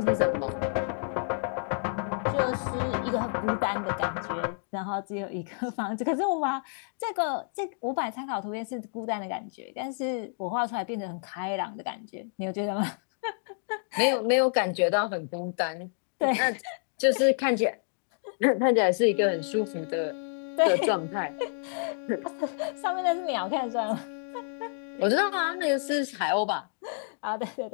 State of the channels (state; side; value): silent; right; digital silence